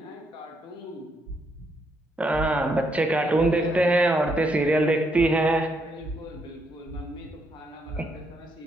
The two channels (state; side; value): normal; both; correlation 0.76